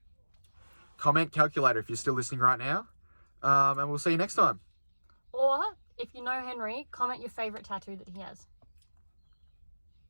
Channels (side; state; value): both; inverted; correlation -1.00